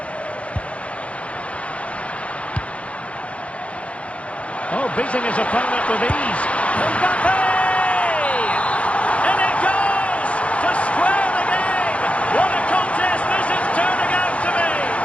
Oh, beating his opponent with ease. Mbappe! In it goes! To square the game! What a contest this is turning out to be!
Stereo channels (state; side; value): late; right; 0.063 ms